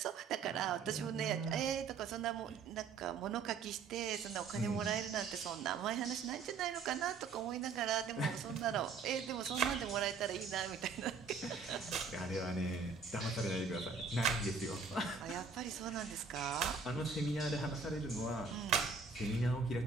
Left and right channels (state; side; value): quieter; left; 5.0 dB